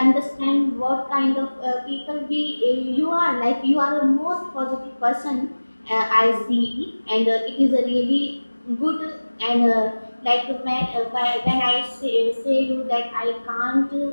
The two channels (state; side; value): inverted; both; correlation -1.00